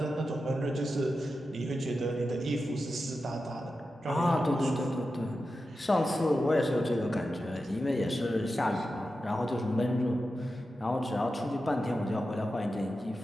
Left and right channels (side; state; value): both; normal; correlation 0.91